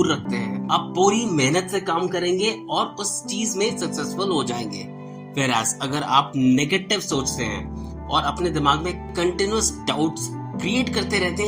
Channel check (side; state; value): both; identical; correlation 1.00